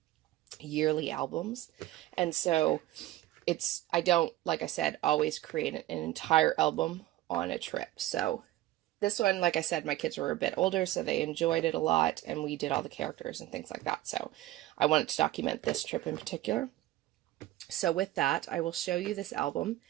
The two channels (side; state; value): left; quieter; 15.5 dB